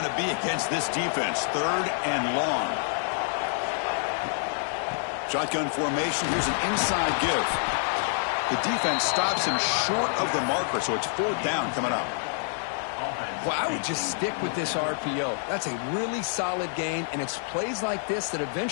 to be against this defense. Third and long. Shotgun formation. Here's an inside give. The defense stops him short of the marker, so it's fourth down coming up. Well, I would just stick with this RPO. That's a really solid gain, and it's plays like this that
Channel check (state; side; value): silent; right; digital silence